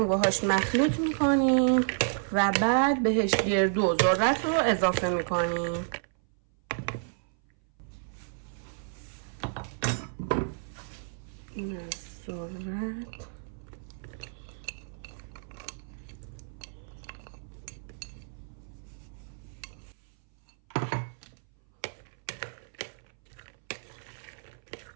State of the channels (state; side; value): silent; left; 57 dB below the other